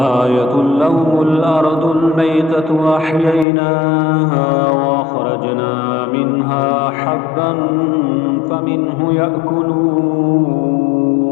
لهم الأرض الميتة أحييناها وأخرجنا منها حبا فمنه يأكلون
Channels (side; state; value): right; drops out; at 3.5 s